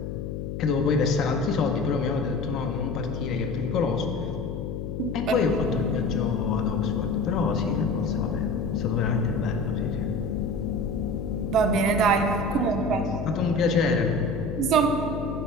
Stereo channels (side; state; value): left; noise; hum, 5 dB below the sound